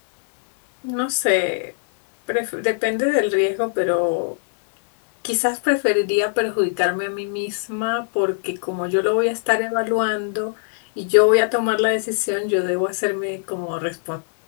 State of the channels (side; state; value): right; silent; 65 dB below the other